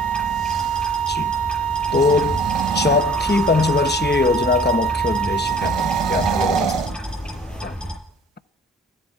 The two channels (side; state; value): both; normal; correlation 0.51